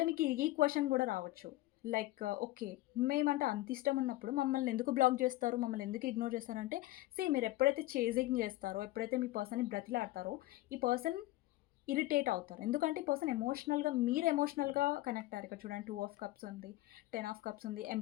మీకు ఈ క్వెషన్ కూడా రావచ్చు. Like okay. మేమంటే అంత ఇష్టం ఉన్నప్పుడు మమ్మల్ని ఎందుకు బ్లాక్ చేస్తారు? మమ్మల్ని ఎందుకు ఇగ్నోర్ చేస్తారంటే, మీరు ఎప్పుడైతే చేజింగ్ చేస్తారో, ఎప్పుడైతే మీ పర్సన్‌ని బ్రతిలాడతారో, ఈ పర్సన్ ఇరిటేట్ అవుతారు. ఎందుకంటే ఈ పర్సన్ మీరు ఎమోషనల్‌గా కనెక్ట్ అయ్యారు. ఇక్కడ చూడండి 2 ఆఫ్ కప్స్ ఉంది, 10 ఆఫ్ కప్స్ ఉంది,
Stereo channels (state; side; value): quieter; right; 17.5 dB